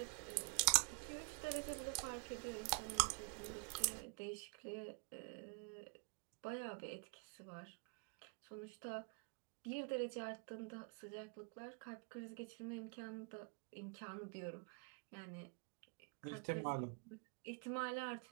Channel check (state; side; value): quieter; left; 36.7 dB